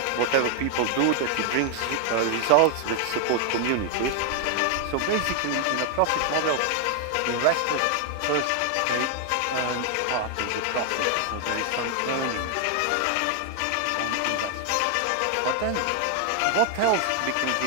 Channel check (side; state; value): both; different; correlation 0.00